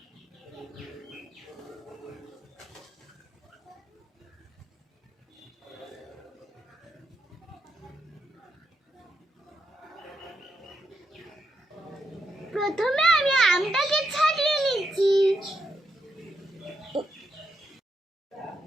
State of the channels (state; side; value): normal; both; correlation 0.82